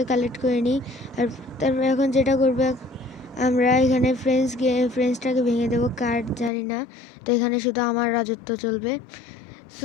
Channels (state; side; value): drops out; right; at 6.5 s